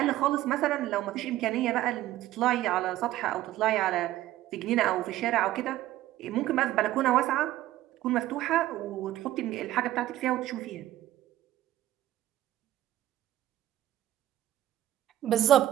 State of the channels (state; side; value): quieter; left; 14.2 dB